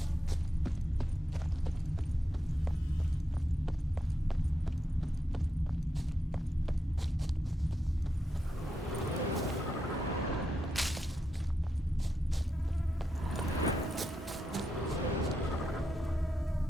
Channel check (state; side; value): normal; both; correlation 0.85